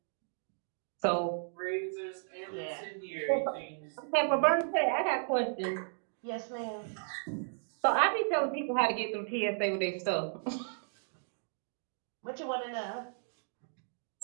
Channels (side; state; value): left; silent; digital silence